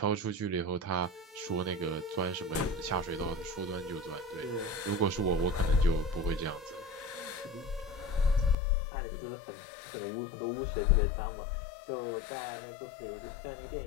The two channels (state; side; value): drops out; right; at 8.6 s